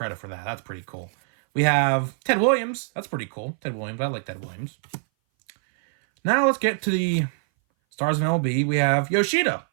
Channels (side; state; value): left; silent; 60 dB below the other